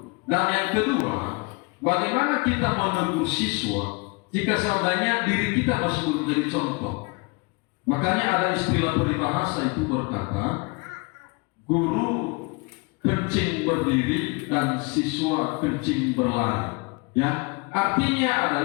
Dan yang kedua, bagaimana kita menegur siswa jika seandainya diri kita masih belum jadi contoh. Makanya ada istilah peribahasa itu berkata, guru kencing berdiri dan siswa kencing berlari. Ya, artinya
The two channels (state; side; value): quieter; right; 29.2 dB